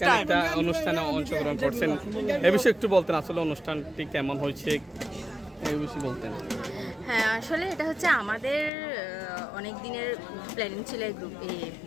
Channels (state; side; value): drops out; right; at 8.7 s